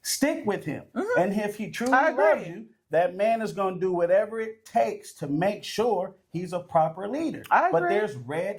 stick with him. Mm-hmm. And if he truly loves you, that man is going to do whatever it takes to make sure he's a proper leader. I agree. But there's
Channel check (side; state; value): both; identical; correlation 1.00